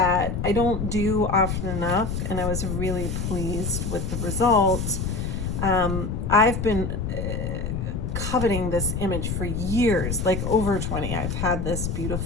I don't do often enough, and I was really pleased with the results. I've been coveting this image for years, like over 20. I've had this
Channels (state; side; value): noise; left; rumble, 2 dB below the sound